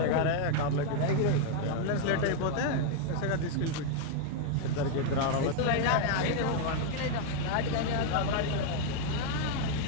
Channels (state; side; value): different; both; correlation 0.00